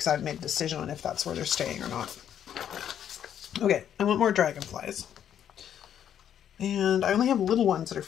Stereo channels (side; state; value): right; quieter; 9.6 dB